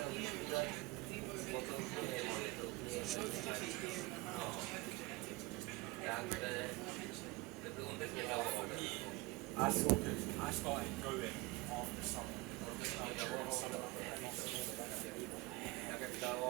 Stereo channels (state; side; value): quieter; left; 22.1 dB